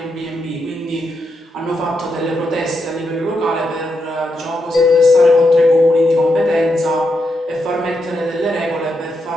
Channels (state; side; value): normal; both; correlation 0.83